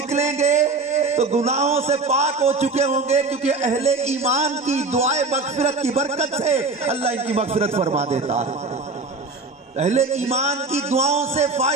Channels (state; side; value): quieter; left; 3.6 dB